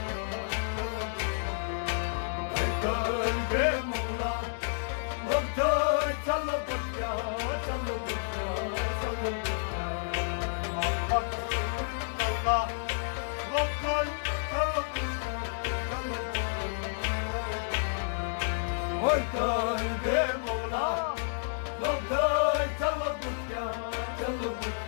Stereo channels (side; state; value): right; silent; digital silence